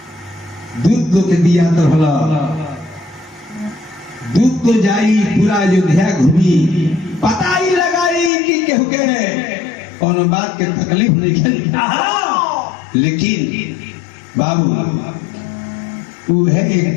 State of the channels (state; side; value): drops out; right; at 8.3 s